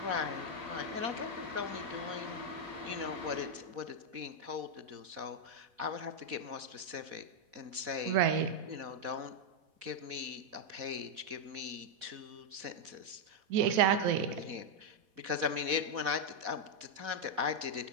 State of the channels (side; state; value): left; late; 4.1 ms